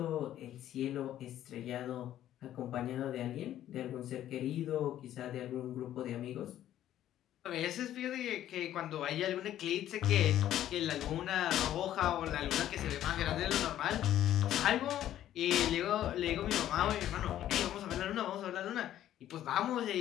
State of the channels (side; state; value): right; quieter; 12.1 dB